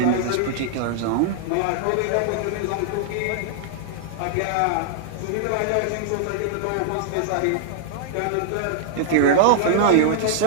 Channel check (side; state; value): both; different; correlation -0.01